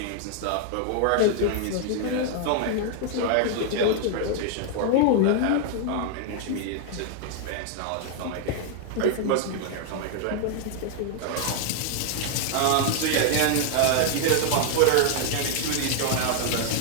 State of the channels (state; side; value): different; both; correlation 0.00